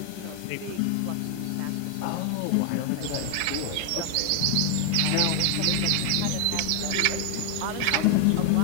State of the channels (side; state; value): both; different; correlation 0.01